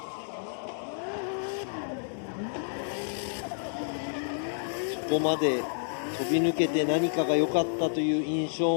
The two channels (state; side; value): silent; right; digital silence